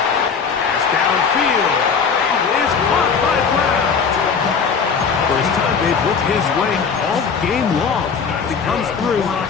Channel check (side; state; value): right; quieter; 5.9 dB